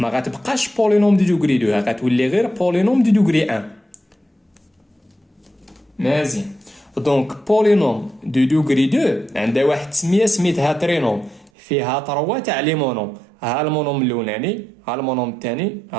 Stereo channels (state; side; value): drops out; left; at 11.5 s